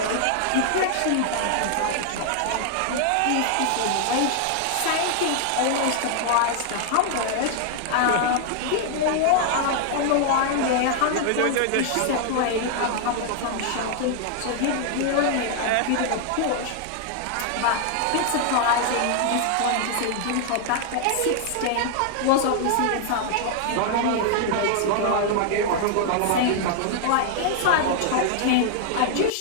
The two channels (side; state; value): both; different; correlation 0.00